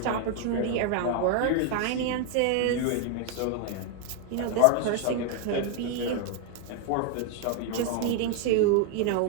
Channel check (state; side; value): different; both; correlation 0.00